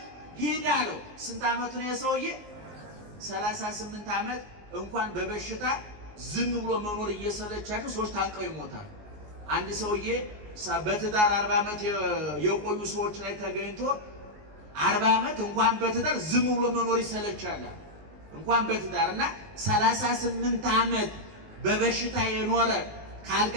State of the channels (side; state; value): left; late; 19 ms